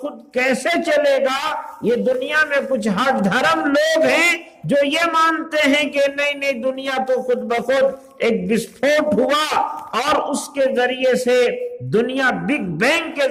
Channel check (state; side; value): identical; both; correlation 1.00